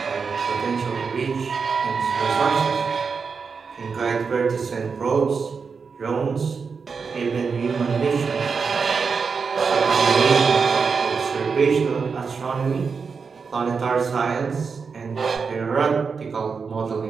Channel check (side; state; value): left; quieter; 5.4 dB